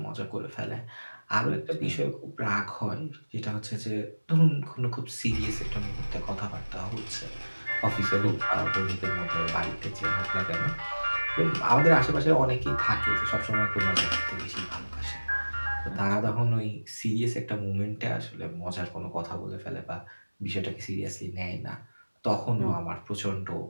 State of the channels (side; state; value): both; inverted; correlation -1.00